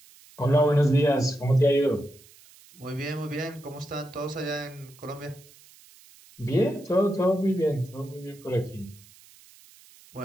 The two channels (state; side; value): noise; right; hiss, 25 dB below the sound